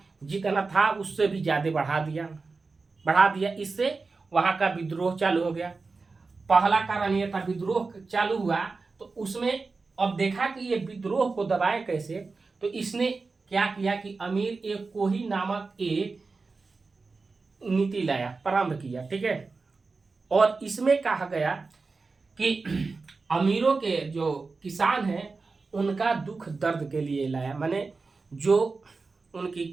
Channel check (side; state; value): left; quieter; 4.1 dB